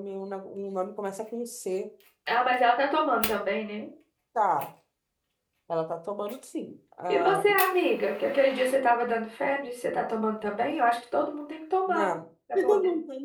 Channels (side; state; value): both; identical; correlation 1.00